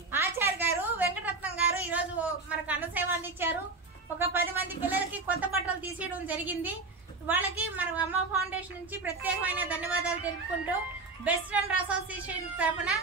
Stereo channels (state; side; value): quieter; left; 3.7 dB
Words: ఆచార్య గారు, వెంకటరత్నం గారు ఈ రోజు మనకు అన్న సేవ అందించారు. ఒక 10 మంది పిల్లలకి కొత్త బట్టలు తీసేయడం జరిగింది. వాళ్ళకి మన అమ్మ ఫౌండేషన్ నుంచి ప్రత్యేకమైన ధన్యవాదాలు తెలుపుకుంటూ బెస్ట్ ఫ్రెండ్ అసోసియేషన్ తరఫున